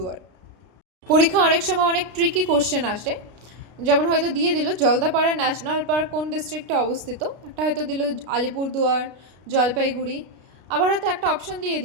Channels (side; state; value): left; late; 33 ms